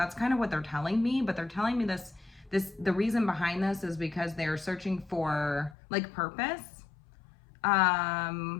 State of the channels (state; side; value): drops out; right; at 5.8 s